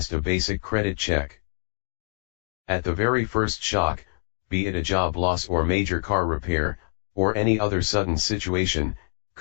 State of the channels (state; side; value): silent; right; digital silence